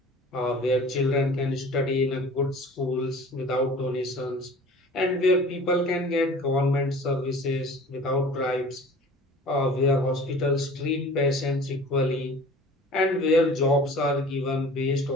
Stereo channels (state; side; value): normal; both; correlation 0.44